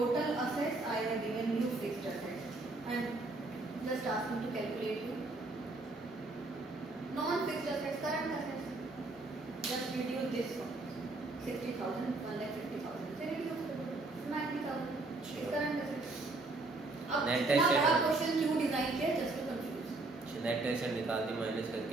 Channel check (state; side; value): quieter; left; 3.2 dB